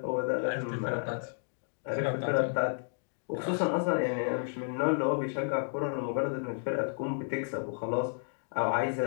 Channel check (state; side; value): silent; right; digital silence